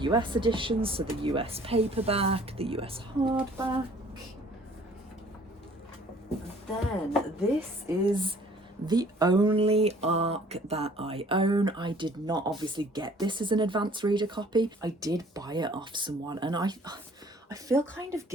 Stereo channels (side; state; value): both; normal; correlation 0.55